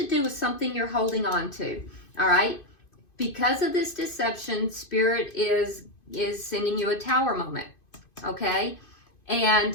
do with something you're holding on to, all right? Because of this deception, Spirit is sending you a tower moment, okay?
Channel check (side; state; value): right; late; 2.5 ms